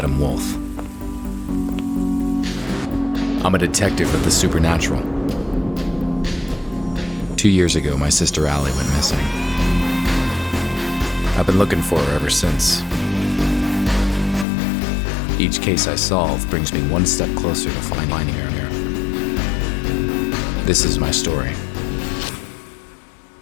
Wolfe. I'm a detective of the supernatural. 2 years ago, my sister Allie went missing. I've been looking for her ever since. Each case I solve brings me one step closer to finding her. This is my story.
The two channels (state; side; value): drops out; right; at 14.5 s